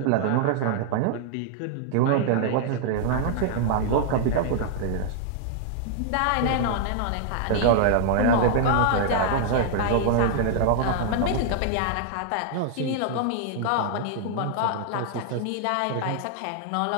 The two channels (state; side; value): different; both; correlation -0.01